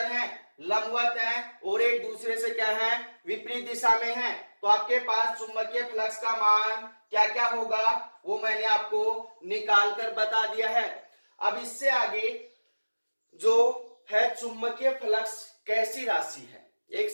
है, लंबवत है और एक दूसरे से क्या है, विपरीत दिशा में है, तो आपके पास चुंबकीय फ्लक्स का मान क्या क्या होगा वो मैंने आपको निकाल कर बता दिया है। अब इससे आगे जो है चुंबकीय फ्लक्स कैसी राशि है, एक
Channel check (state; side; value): inverted; both; correlation -1.00